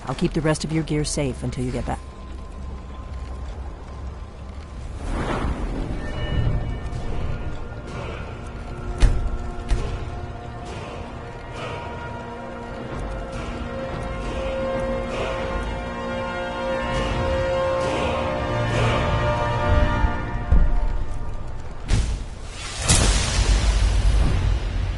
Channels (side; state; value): both; identical; correlation 1.00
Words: I'll keep the rest of your gear safe until you get back.